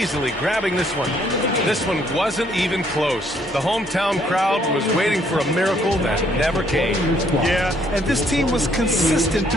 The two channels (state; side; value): normal; both; correlation 0.67